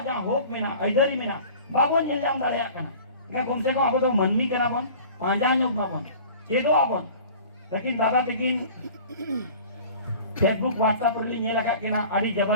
जा होप में ना इधर में ना बाबो नेलम दाड़े कना के कम से कम आबो तो मनमी कना बन पांजा योग ना बन चेदो आबन लेकिन दादा लेकिन फेसबुक व्हाट्सएप री नेला का केना आडी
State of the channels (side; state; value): both; inverted; correlation -0.44